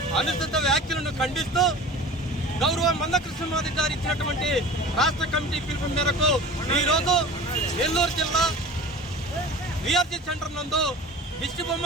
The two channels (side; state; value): both; normal; correlation 0.38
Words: అనుచిత వ్యాఖ్యలను ఖండిస్తూ గౌరవ మందకృష్ణ మాది గారు ఇచ్చినటువంటి రాష్ట్ర కమిటీ పిలుపు మేరకు ఈరోజు నెల్లూరు జిల్లా వీఆర్సీ సెంటర్ నందు